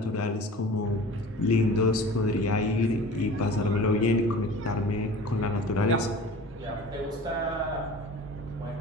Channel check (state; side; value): normal; both; correlation 0.40